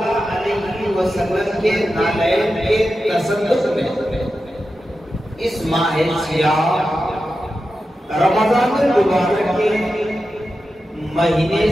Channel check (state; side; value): normal; both; correlation 0.91